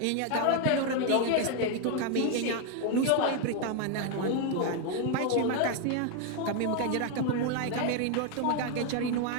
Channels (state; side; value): different; both; correlation 0.01